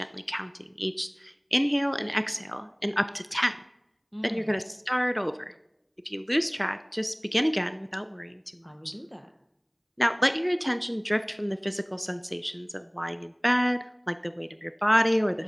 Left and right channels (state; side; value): identical; both; correlation 1.00